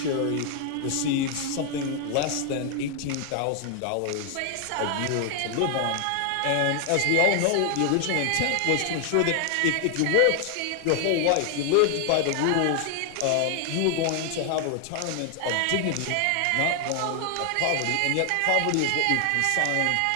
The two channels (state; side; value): different; both; correlation 0.00